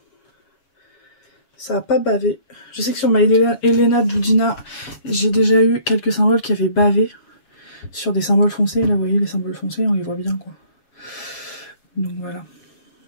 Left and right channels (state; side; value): late; right; 7.2 ms